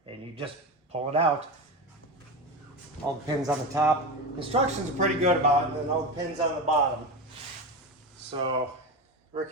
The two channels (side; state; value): both; normal; correlation 0.21